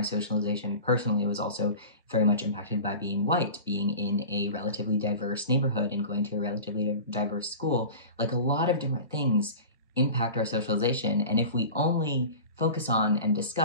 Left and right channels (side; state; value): both; inverted; correlation -0.35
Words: socialization personally was also very much impacted by being white, being in a relatively diverse neighborhood and going to a relatively diverse school. Like, a lot of different things impact our socialization. And if we only focus on and